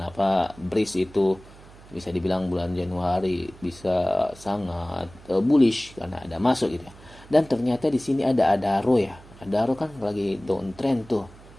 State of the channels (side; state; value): right; noise; hum, 21 dB below the sound